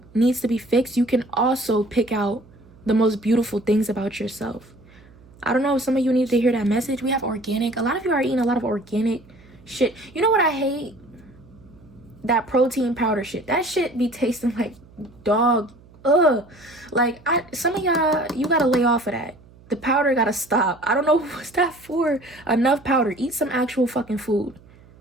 needs to be fixed, you can also pick out the most beautiful things about yourself. I don't know if some of you need to hear that message. We have organic. A lot of you are eating a lot of organic shit. You know what I hate? That protein powder shit. That shit be tasting like dog. Ugh. Like, some of y'all, you gotta lay off of that. The powder gotta stop. I don't know what's that for. Enough powder. Eat some actual fucking food.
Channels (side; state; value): right; noise; hum, 25 dB below the sound